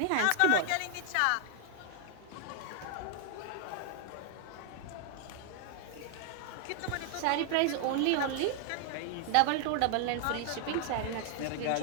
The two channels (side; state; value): both; different; correlation 0.00